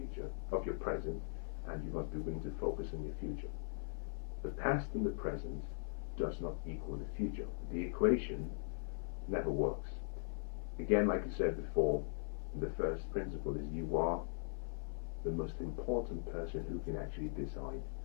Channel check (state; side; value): silent; right; 51 dB below the other